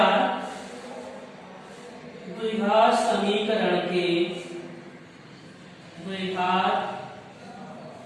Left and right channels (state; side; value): identical; both; correlation 1.00